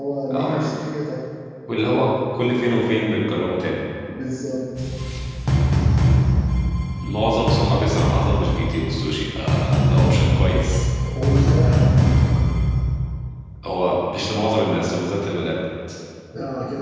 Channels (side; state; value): both; identical; correlation 1.00